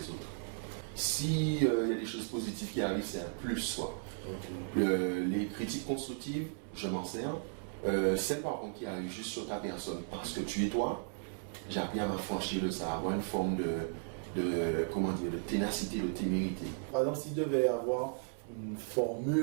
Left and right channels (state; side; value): silent; left; 54 dB below the other